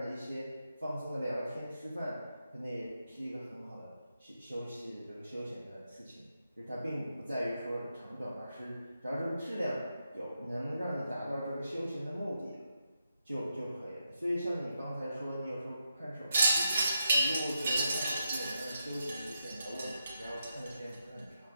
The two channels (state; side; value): inverted; both; correlation -0.85